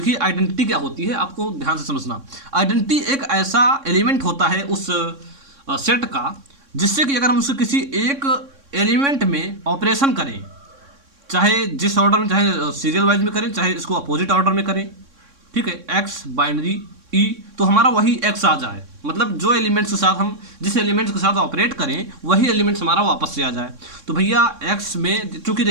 आइडेंटिटी क्या होती है आपको ध्यान से समझना। आइडेंटिटी एक ऐसा एलिमेंट होता है उस सेट का जिससे कि अगर हम उसके किसी एक एलिमेंट में ऑपरेशन करें, चाहे जिस ऑर्डर में, चाहे सीरियल वाइज में करें, चाहे इसको अपोजिट ऑर्डर में करें, ठीक है, एक्स बाइनरी ई, तो हमारा वही एक्स आ जाए, मतलब जो एलिमेंट्स के साथ हम जिस एलिमेंट्स के साथ ऑपरेट करें वही एलिमेंट्स हमारा वापस से आ जाए। तो भैया एक्स में चूंकि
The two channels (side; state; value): left; late; 3.6 ms